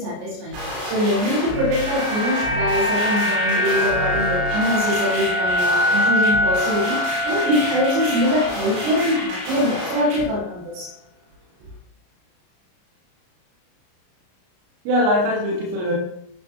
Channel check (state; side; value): late; left; 33 ms